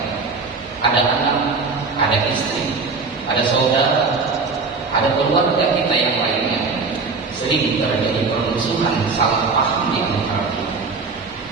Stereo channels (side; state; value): left; quieter; 4.4 dB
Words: ada anak, ada istri, ada saudara, ada keluarga kita yang lainnya, sering terjadi permusuhan, salah paham di antara kita.